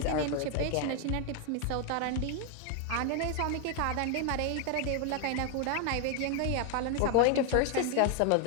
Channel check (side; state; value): both; different; correlation 0.01